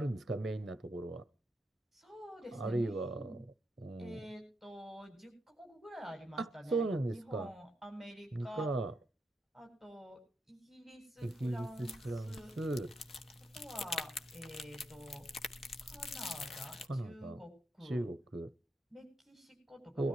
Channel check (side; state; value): both; normal; correlation 0.81